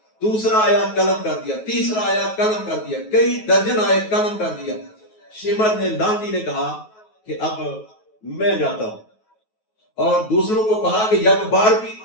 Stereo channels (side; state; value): right; late; 9.3 ms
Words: دوسرا آیا قلم کر دیا، تیسرا آیا قلم کر دیا، کئی درجن آئے قلم کر دیا۔ شمر نے، لانتی نے کہا کہ اب میں جاتا ہوں، اور دوسروں کو کہا کہ یک بار بھی